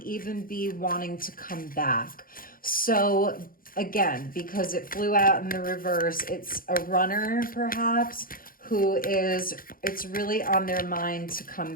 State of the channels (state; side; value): late; right; 0.41 ms